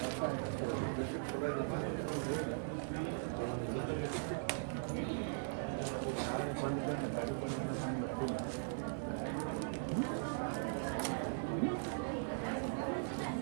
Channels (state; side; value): silent; left; digital silence